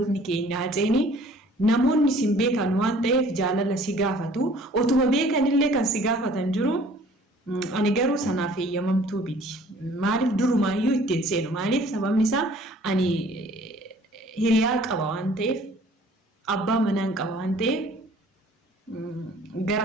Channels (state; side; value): normal; both; correlation 0.53